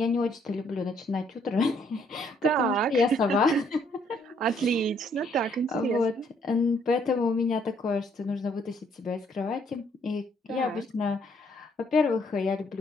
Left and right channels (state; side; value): normal; both; correlation 0.67